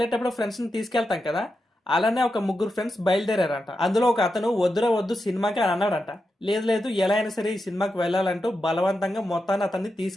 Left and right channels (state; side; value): normal; both; correlation 0.88